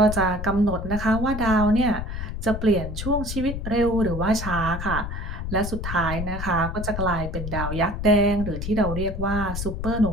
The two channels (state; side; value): noise; left; rumble, 5 dB below the sound